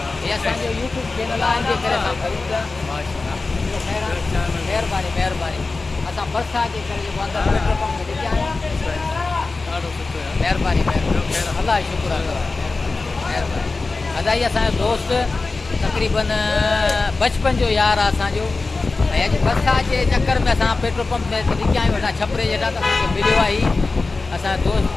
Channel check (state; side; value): quieter; right; 3.7 dB